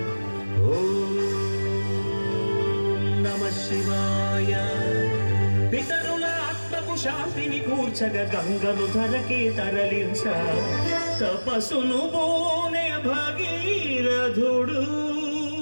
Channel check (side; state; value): both; inverted; correlation -1.00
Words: ఓం నమః శివాయ. పితరుల ఆత్మకు శాంతిని కూర్చగ గంగను ధరకే తరలించ తపస్సును బోనే భగీరథుడు.